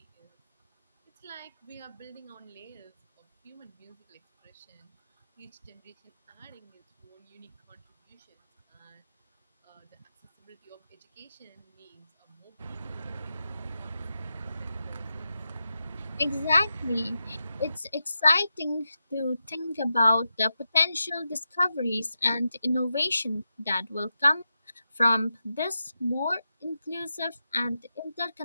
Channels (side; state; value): both; inverted; correlation -0.88